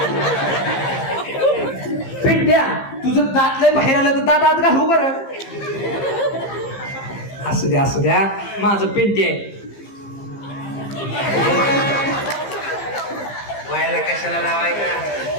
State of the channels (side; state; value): right; late; 15 ms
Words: पिंट्या तुझं दात लय बाहेर आलं तर दात आत घालू बरं. असू द्या माझं पिंटी आहे. व्हायला कशाला लावायचा.